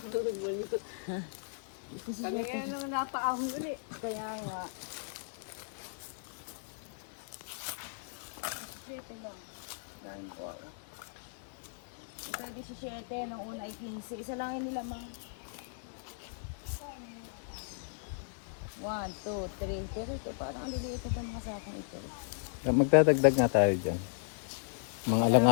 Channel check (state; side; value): silent; right; digital silence